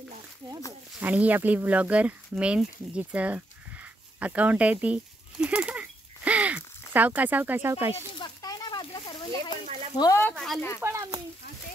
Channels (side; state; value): both; normal; correlation 0.78